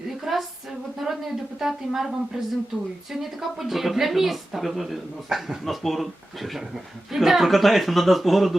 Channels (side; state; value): both; normal; correlation 0.94